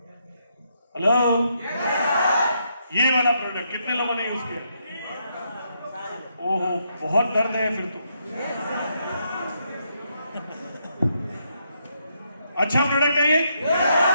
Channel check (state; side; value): inverted; both; correlation -0.77